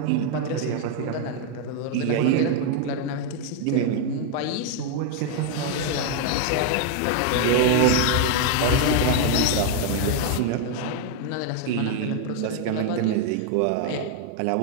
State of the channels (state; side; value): different; both; correlation 0.00